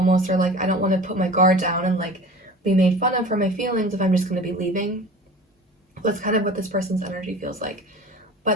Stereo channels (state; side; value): normal; both; correlation 0.39